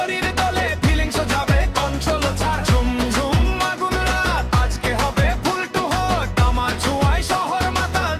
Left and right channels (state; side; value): identical; both; correlation 1.00